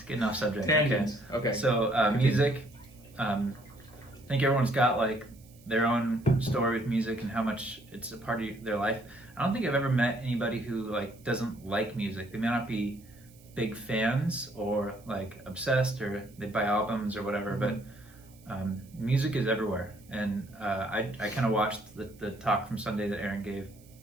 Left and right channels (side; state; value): right; noise; hiss, 27 dB below the sound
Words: getting off subject. Tangents. Okay. So music, I think everyone's got like their own story with music and how much it's a part of their life. I don't think I've ever met anybody who like doesn't like music. They may not be big fans or like obsessed, or they buy albums or whatever, but music is everywhere. And I kind of watched the talk from Sunday that Erin gave.